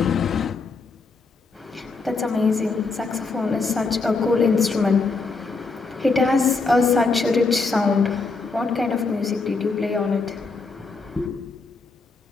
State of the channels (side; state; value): right; quieter; 4.1 dB